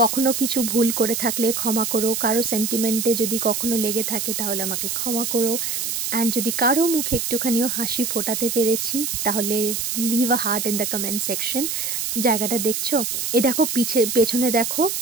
কখনো কিছু ভুল করে থাকলে ক্ষমা করো, কারো সেন্টিমেন্টে যদি কখনো লেগে থাকে তাহলে আমাকে ক্ষমা করো। অ্যান্ড যদি কারো মুখে একটুখানিও হাসি ফোটাতে পেরেছি তাহলে leave a heart in the comment section. জায়গাটা দেখছো, এই দেখো পেছনে দেখো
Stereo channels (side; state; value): right; noise; hiss, 2 dB below the sound